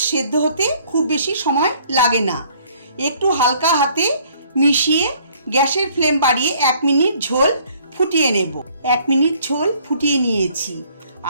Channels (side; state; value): both; inverted; correlation -0.60